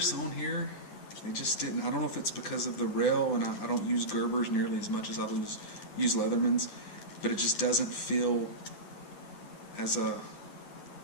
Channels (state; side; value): late; right; 9.9 ms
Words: on here, they just didn't. I don't know if it's because of the rail, and I don't use Gerbers nearly as much as I use Leathermans, but it just doesn't feel as I